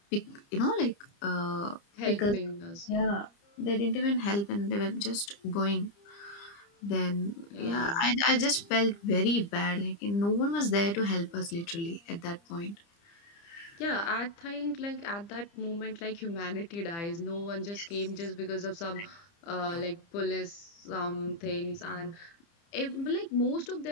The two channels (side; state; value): right; late; 30 ms